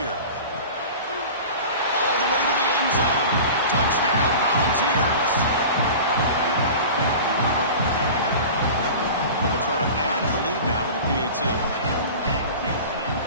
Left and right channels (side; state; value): both; inverted; correlation -0.36